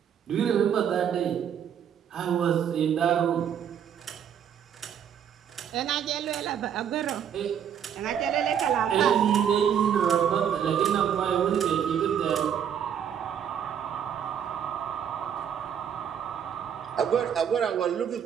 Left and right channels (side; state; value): left; quieter; 8.6 dB